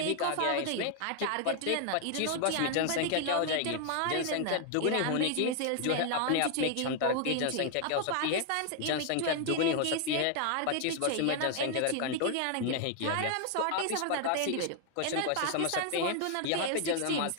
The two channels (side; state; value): both; different; correlation 0.00